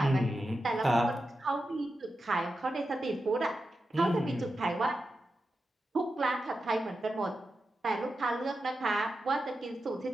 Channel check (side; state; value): both; normal; correlation 0.90